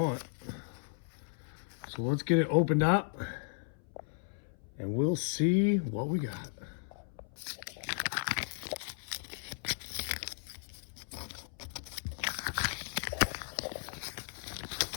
So let's get it opened up and we'll see what we got.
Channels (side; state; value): right; silent; 54 dB below the other